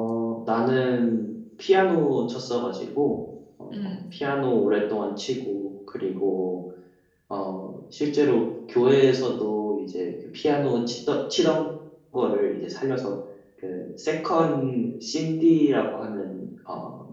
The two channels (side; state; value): both; identical; correlation 1.00